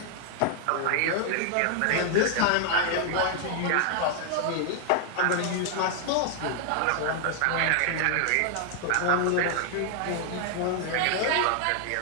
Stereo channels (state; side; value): different; both; correlation 0.00